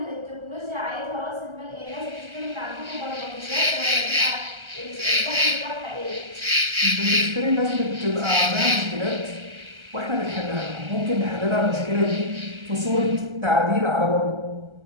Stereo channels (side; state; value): left; late; 1.3 ms